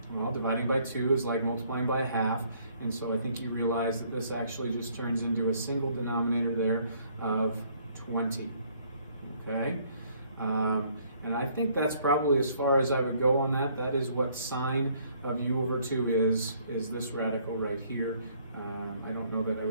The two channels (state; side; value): inverted; both; correlation -0.64